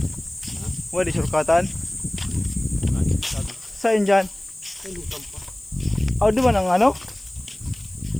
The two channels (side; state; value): left; noise; hiss, 25 dB below the sound